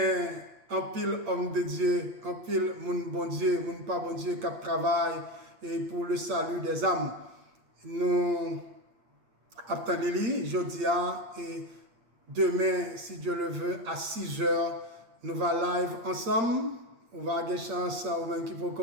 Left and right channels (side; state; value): left; late; 8.7 ms